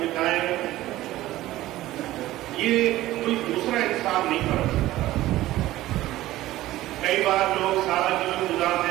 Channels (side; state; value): left; quieter; 15.9 dB